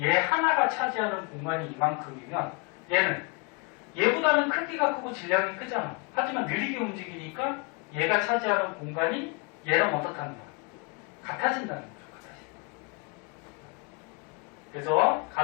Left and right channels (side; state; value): right; quieter; 31.8 dB